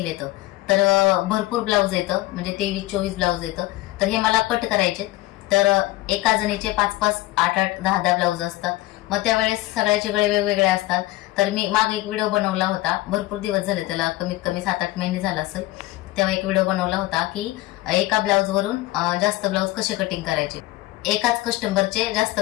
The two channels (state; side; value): quieter; right; 17.8 dB